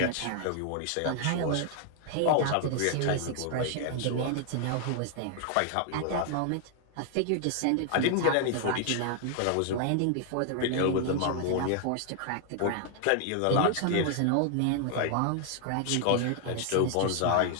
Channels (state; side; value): different; both; correlation 0.00